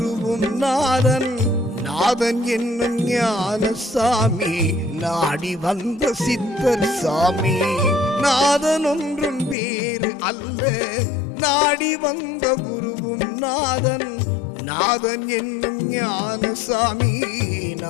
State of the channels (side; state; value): right; drops out; at 9.6 s